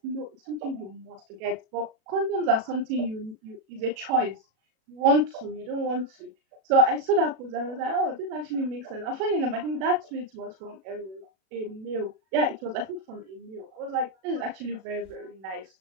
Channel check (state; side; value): late; left; 37 ms